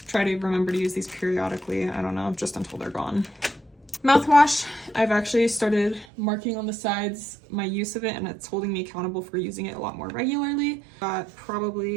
try to remember to use these periodically. I don't know, just until they're gone. Mouthwash, I've actually started marking on the sides my use of it, and it's holding me accountable for using it a lot more regularly. Got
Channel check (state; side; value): drops out; left; at 6.1 s